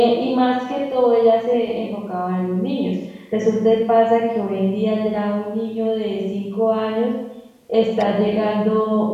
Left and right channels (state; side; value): identical; both; correlation 1.00